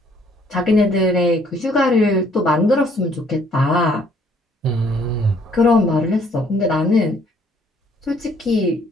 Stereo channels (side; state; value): both; normal; correlation 0.63